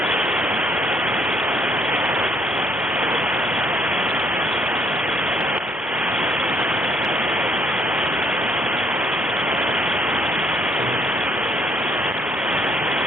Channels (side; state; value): both; normal; correlation 0.67